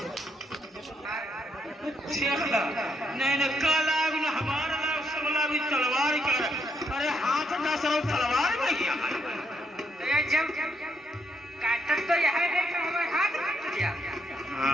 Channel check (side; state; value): both; normal; correlation 0.76